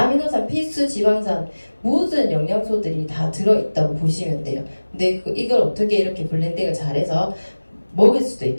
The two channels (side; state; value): both; inverted; correlation -1.00